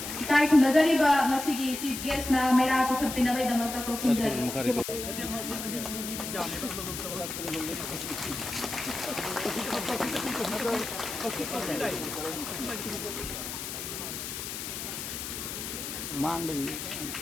Kita ikut dari bah masih si guest na Meira cukup pindah dari dalam tak kau sendiri. Mang đi.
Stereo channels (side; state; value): left; noise; hiss, 6 dB below the sound